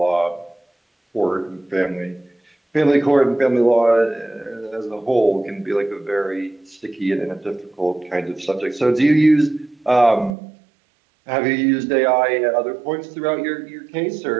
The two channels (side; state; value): left; drops out; at 10.4 s